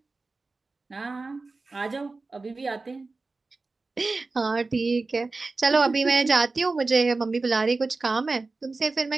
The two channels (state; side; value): quieter; left; 3.7 dB